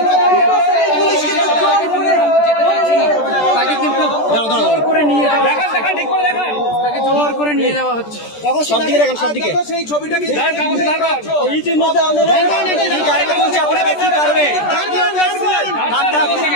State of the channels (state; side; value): late; right; 14 ms